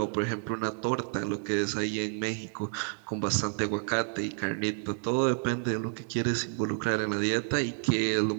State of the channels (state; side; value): silent; left; 58 dB below the other